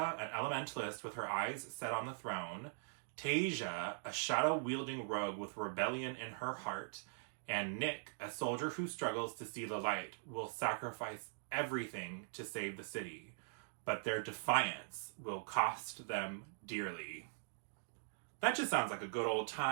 an elementalist with her eyes set on the throne, Tasia, a shadow-wielding rogue with rebellion in her heart, and Nick, a soldier who struggles to see the light, will sacrifice everything to save the city. But their defiance will cost them dearly. That just sounds like a good old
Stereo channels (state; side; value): silent; left; digital silence